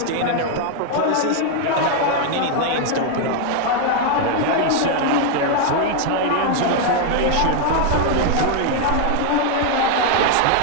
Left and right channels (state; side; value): different; both; correlation 0.00